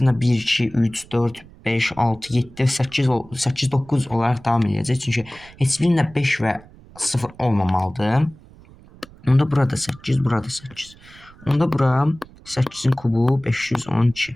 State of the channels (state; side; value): noise; right; rumble, 23 dB below the sound